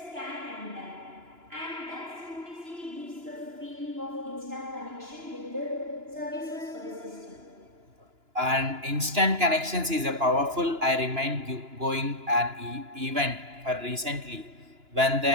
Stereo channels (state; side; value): late; left; 2.9 ms